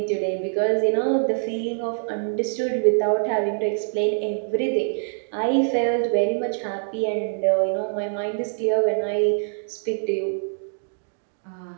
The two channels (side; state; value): left; silent; digital silence